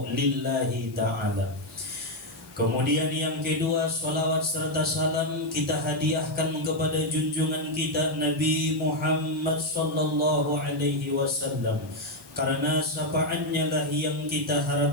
lillahi ta'ala. Kemudian yang kedua, salawat serta salam kita hadiahkan kepada junjungan kita Nabi Muhammad sallallahu alaihi wasallam, karena syafaatnya lah yang kita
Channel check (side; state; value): left; noise; hiss, 24 dB below the sound